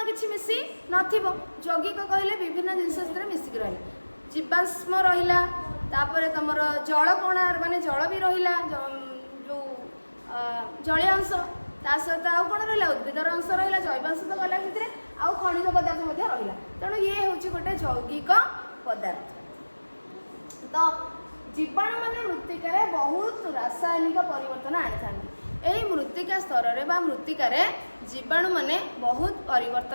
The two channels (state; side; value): inverted; both; correlation -1.00